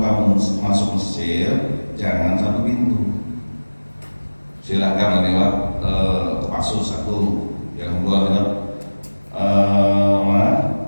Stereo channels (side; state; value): both; inverted; correlation -1.00